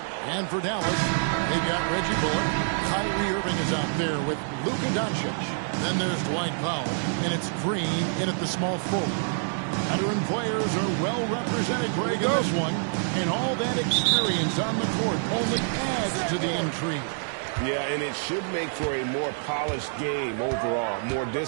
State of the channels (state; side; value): silent; left; digital silence